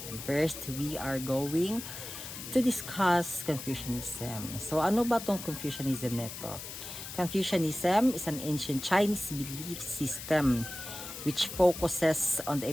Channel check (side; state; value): left; noise; hiss, 10 dB below the sound